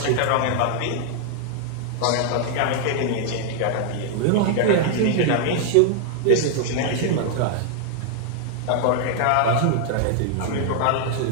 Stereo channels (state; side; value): different; both; correlation 0.00